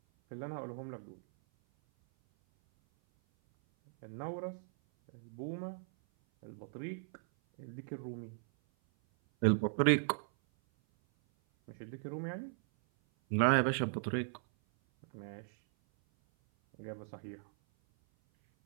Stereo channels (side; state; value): left; silent; 53 dB below the other